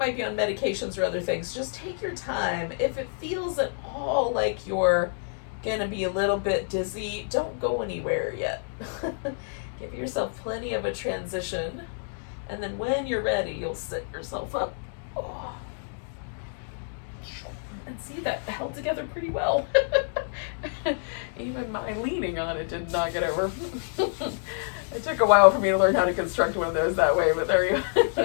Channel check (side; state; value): right; silent; digital silence